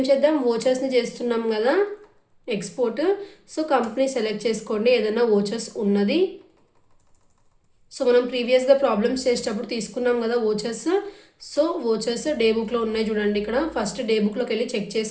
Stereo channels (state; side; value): identical; both; correlation 1.00